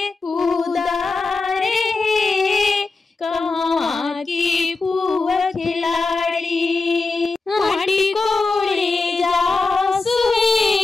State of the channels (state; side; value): quieter; right; 3.8 dB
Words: उदारे कहाँ की पुआ खिलाड़ी माटी कोड़े जासु